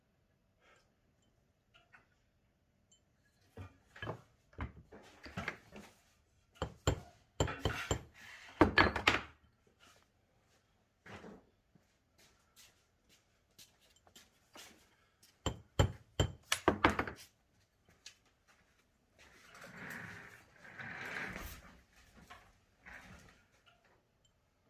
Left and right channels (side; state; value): both; identical; correlation 1.00